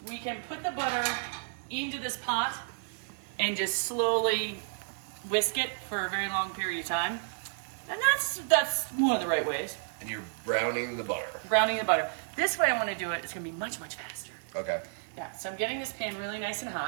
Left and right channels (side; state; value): left; silent; 57 dB below the other